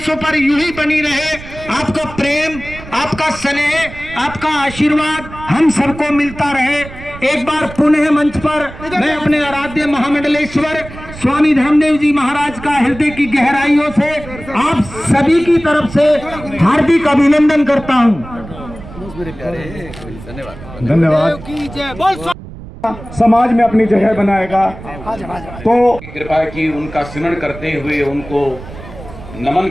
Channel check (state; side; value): noise; right; rumble, 15 dB below the sound